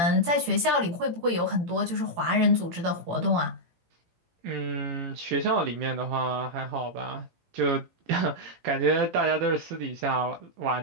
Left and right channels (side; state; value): left; late; 17 ms